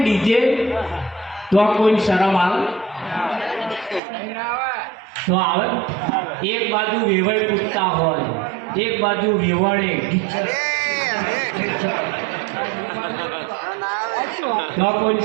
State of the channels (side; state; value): left; drops out; at 4.0 s